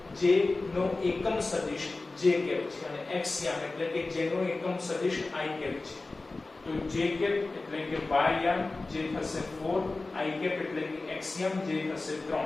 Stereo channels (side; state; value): right; quieter; 3.4 dB